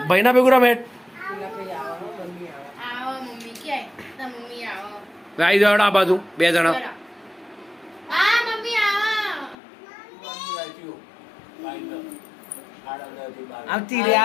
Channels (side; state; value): right; drops out; at 9.6 s